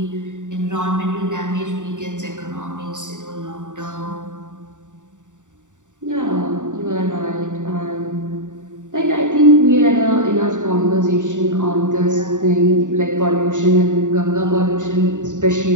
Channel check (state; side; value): late; left; 0.86 ms